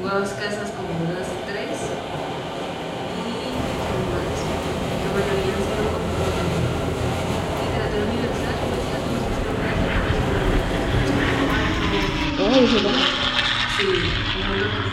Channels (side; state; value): both; identical; correlation 1.00